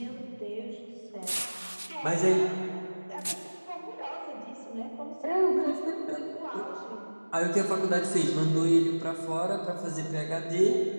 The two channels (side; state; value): both; inverted; correlation -1.00